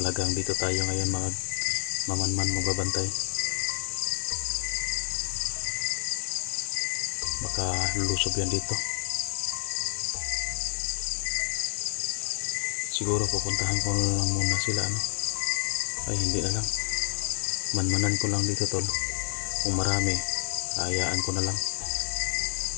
dito tayo ngayon mga mamanman magbabantay. Baka lulusob yan dito. Siguro pupuntahan ko na lang muna sila, ano? Ay hindi na lang, manmanan ko lang dito tol. Kung marami, hayaan ko na lang.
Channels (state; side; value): silent; right; 57 dB below the other